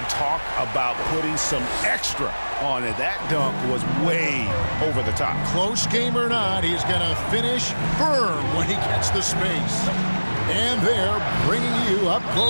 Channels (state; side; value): inverted; both; correlation -1.00